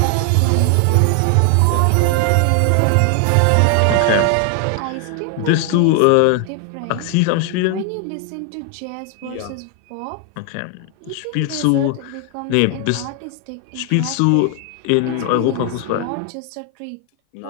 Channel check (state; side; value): different; both; correlation 0.00